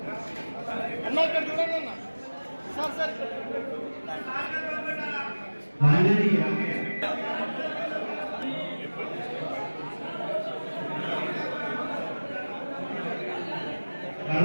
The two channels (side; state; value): both; inverted; correlation -1.00